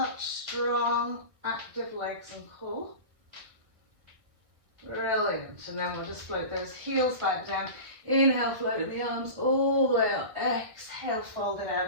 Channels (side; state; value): left; late; 1.6 ms